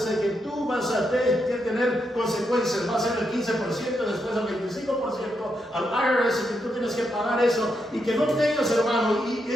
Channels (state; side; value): normal; both; correlation 0.82